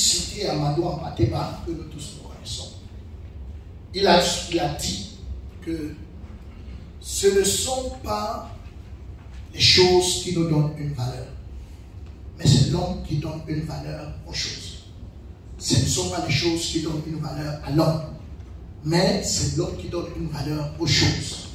Amadou Ampateba, que nous tous nous connaissons. Il a dit que ce ne sont pas les choses qui nous donnent une valeur, mais c'est l'homme qui donne une valeur aux choses. Ce ne sont pas les choses qui donnent une valeur à l'homme, mais c'est l'homme qui donne une valeur aux choses.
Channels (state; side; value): identical; both; correlation 1.00